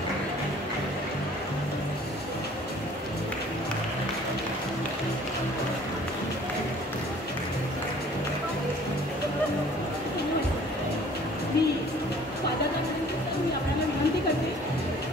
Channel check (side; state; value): both; normal; correlation 0.52